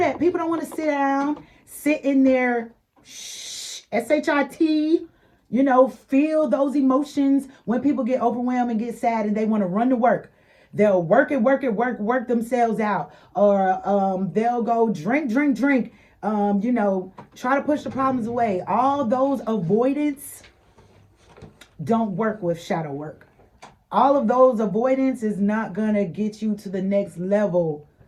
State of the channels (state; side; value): identical; both; correlation 1.00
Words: People don't want to sit in there, S-H-I-T, feel those emotions. When people get overwhelmed and get sad and they want to run to work, they'll work themselves out. Or they'll go drink, try to push the problems away. All those avoidance don't work with shadow work. All of those avoidance is not going to get you to the next level